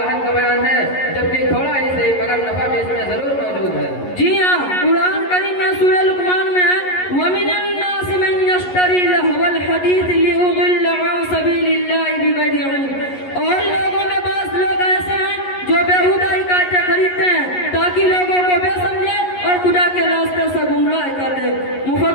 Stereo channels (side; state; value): right; late; 11 ms